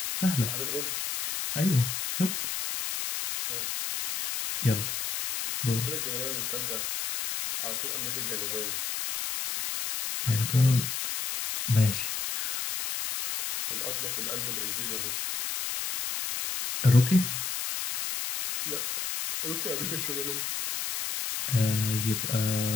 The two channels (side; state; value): left; noise; hiss, 3 dB below the sound